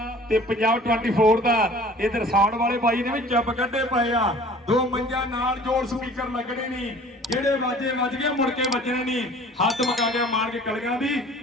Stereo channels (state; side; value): normal; both; correlation 0.48